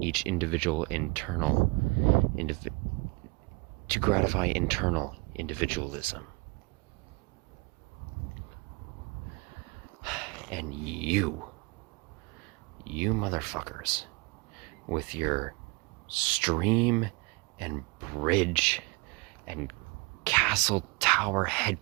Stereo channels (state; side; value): quieter; left; 27.6 dB